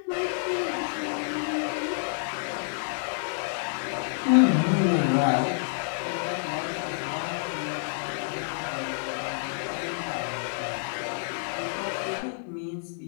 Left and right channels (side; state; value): right; silent; digital silence